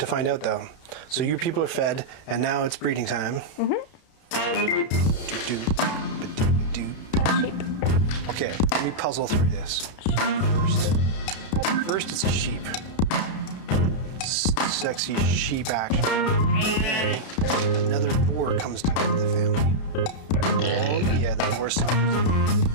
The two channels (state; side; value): late; right; 32 ms